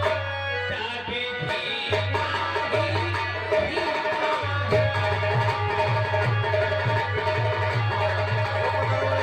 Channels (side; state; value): both; identical; correlation 1.00